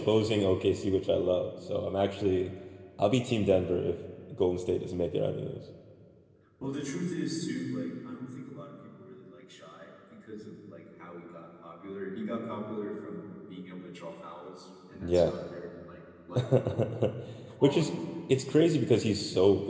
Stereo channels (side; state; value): both; identical; correlation 1.00